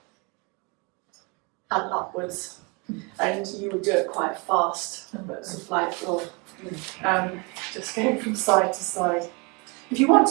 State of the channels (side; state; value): left; quieter; 30.4 dB